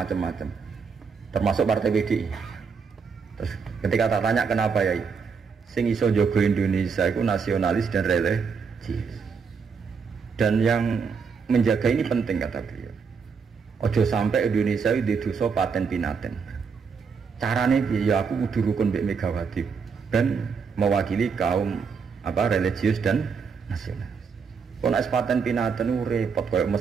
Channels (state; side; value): quieter; left; 5.7 dB